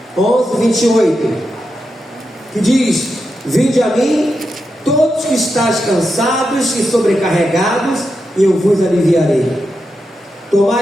11, 28. Que diz: Vinde a mim, todos que estáis cansados e sobrecarregados, e eu vos aliviarei.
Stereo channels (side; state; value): both; normal; correlation 0.87